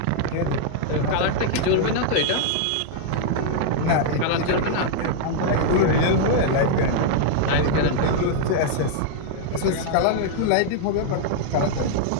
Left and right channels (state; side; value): different; both; correlation -0.01